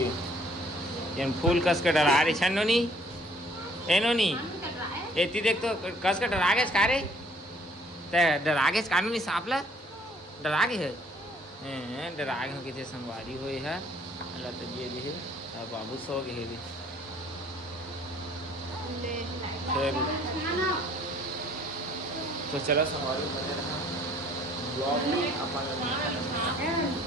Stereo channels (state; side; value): normal; both; correlation 0.59